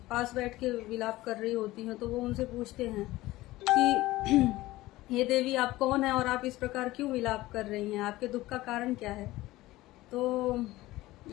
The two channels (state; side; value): quieter; right; 17.8 dB